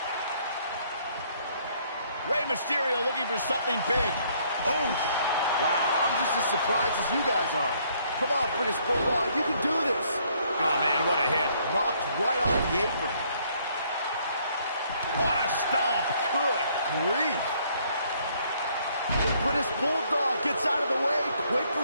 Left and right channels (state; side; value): inverted; both; correlation -0.66